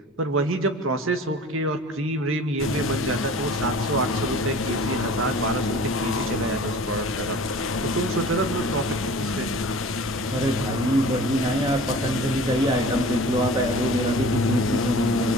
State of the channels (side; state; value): both; normal; correlation 0.43